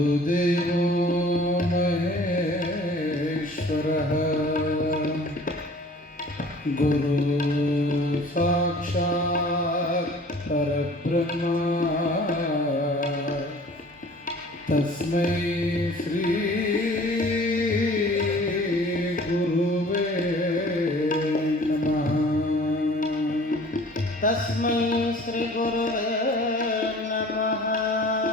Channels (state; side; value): normal; both; correlation 0.48